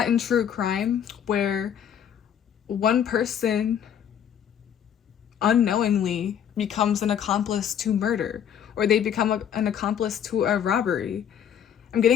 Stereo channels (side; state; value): right; quieter; 9.0 dB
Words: in true crime where one person unknowingly becomes an accomplice to murder, or they become an accomplice to a robbery. I'm